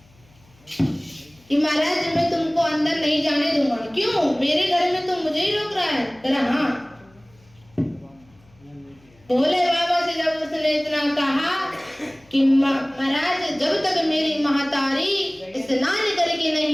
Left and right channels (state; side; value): noise; left; hum, 29 dB below the sound